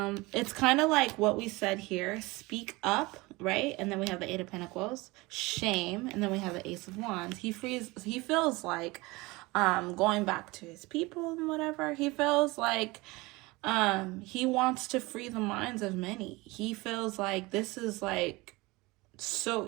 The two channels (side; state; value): left; quieter; 22.7 dB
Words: It's kind of like what we said here. Speak up, right? And then we have the Eight of Pentacles. Shame. And then we have the Ace of Wands. He feels like going back to his people and whatever. He feels like he wants to free the minds of many. He feels like this is like so